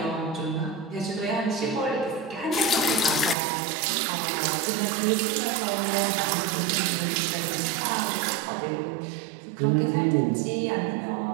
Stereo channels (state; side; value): drops out; left; at 3.4 s